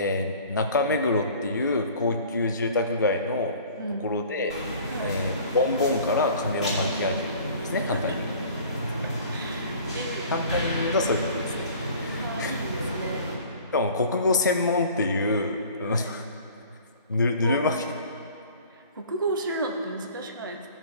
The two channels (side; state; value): both; inverted; correlation -0.48